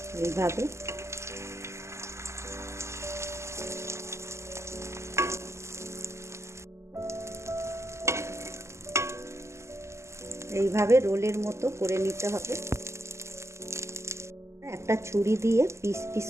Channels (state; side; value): late; left; 0.13 ms